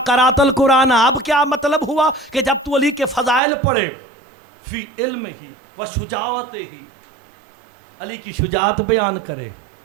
قرأت القرآن، اب کیا مطلب ہوا کہ جب تو علی کے فضائل پڑھے فی علم ہی و شجاعت ہی، علی کی شجاعت بیان کرے،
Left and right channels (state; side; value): drops out; left; at 3.4 s